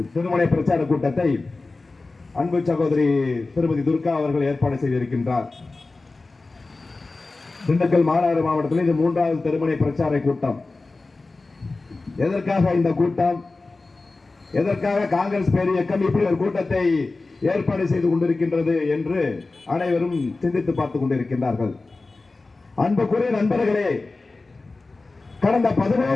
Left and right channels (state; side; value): quieter; right; 3.5 dB